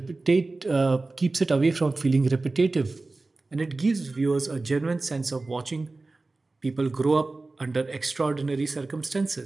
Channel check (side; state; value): left; quieter; 3.4 dB